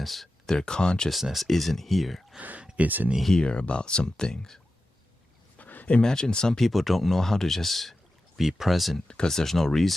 their consciousness isn't here. It's in here about some things. Imagine some people don't know how to just be present because there's no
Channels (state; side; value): normal; both; correlation 0.92